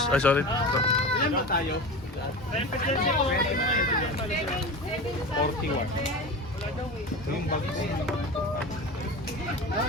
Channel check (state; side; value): normal; both; correlation 0.29